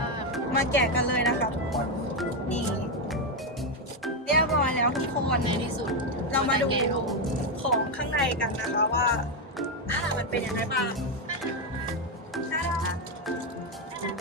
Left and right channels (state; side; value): normal; both; correlation 0.06